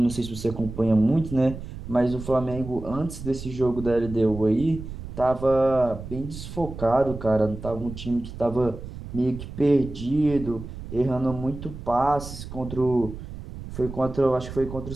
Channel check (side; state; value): right; noise; rumble, 11 dB below the sound